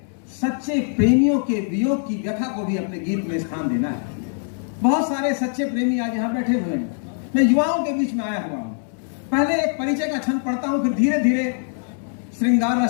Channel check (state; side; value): silent; right; digital silence